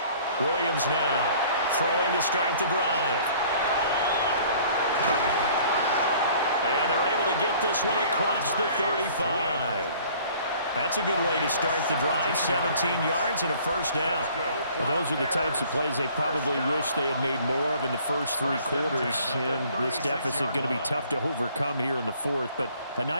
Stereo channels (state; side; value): inverted; both; correlation -0.53